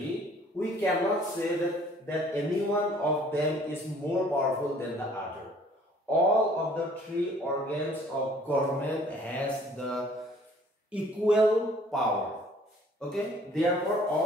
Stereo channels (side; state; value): both; normal; correlation 0.56